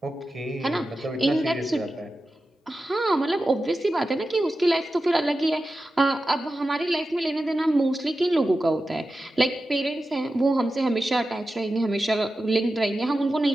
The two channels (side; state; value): both; normal; correlation 0.93